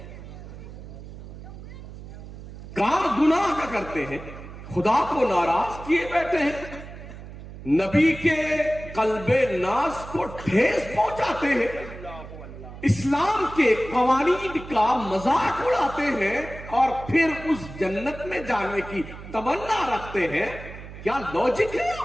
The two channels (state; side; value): noise; right; hum, 13 dB below the sound